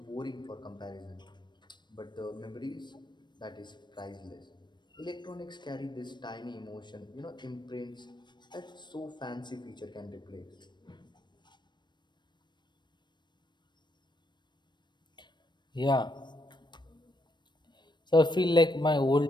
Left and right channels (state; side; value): late; right; 0.22 ms